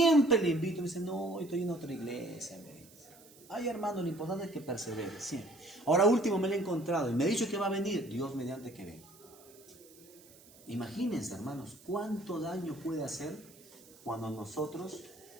le invito. Me dice, no, estoy en otra iglesia. Me dice. Ay, hermano, lo importante es que persevere. Siempre. Ahora último me lo he encontrado. Y me ha dicho que va a venir. Dios mediante que venga. Imagínense, hermanos, cuánto daño puede hacer cuando nosotros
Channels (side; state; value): right; noise; hiss, 24 dB below the sound